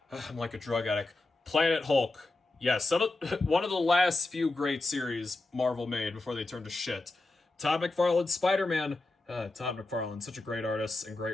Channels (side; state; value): right; quieter; 3.1 dB